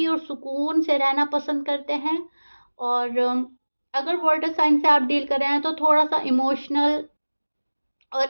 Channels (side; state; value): both; inverted; correlation -1.00